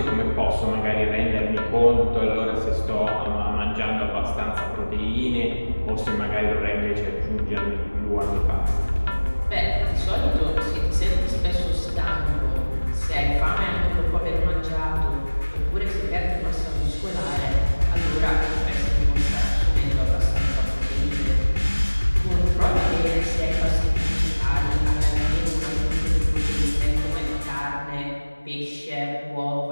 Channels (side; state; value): both; inverted; correlation -1.00